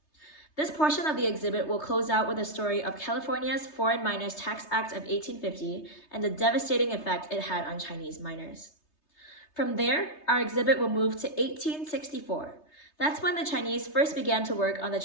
This portion of the exhibit will close out with a story of California's Foreign Miners Tax Act of 1850 and the devastating effect it had on Chinese miners. From there, our exhibit will move to 1864. That's when the Chinese first began to work on the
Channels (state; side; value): late; right; 3.3 ms